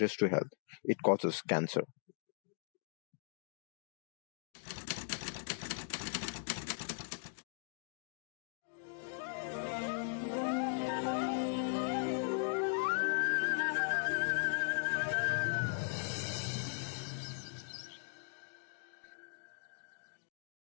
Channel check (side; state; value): right; silent; digital silence